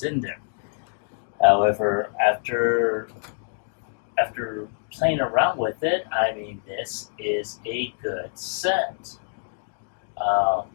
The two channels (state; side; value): silent; right; digital silence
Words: in there. However, after playing around with it, I mean, this is a good set.